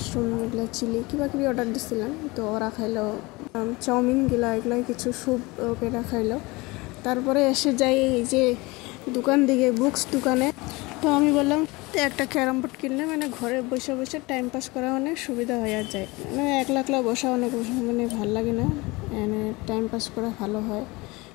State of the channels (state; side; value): quieter; right; 23.5 dB